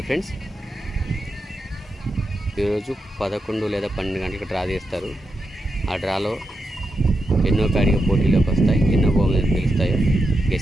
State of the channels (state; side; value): normal; both; correlation 0.87